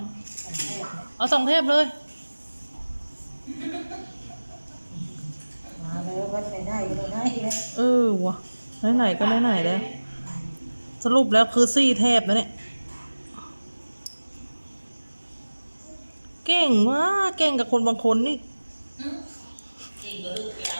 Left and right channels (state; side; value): inverted; both; correlation -1.00